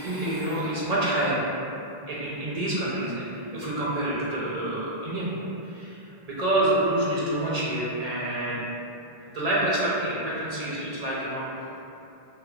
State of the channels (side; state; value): left; late; 1.8 ms